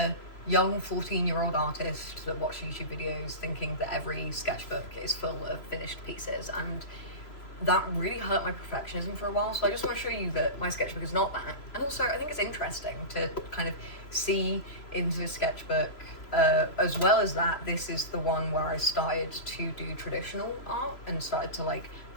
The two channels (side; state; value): right; late; 3.0 ms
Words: young 14-year-old artist that watched YouTube videos thinking that every sketchbook is full of finished pieces, and that really hurt my perfectionism for a while. So I just want to show you that my sketchbook is not that. And also I think it's interesting to kind of see into the sketchbook, as well as that, this is the one where I started to do traditional art and started to like